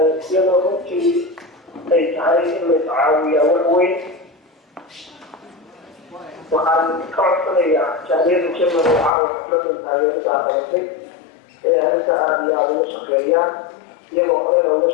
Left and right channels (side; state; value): right; drops out; at 9.1 s